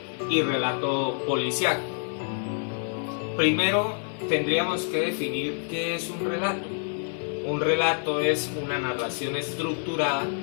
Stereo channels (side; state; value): right; silent; 57 dB below the other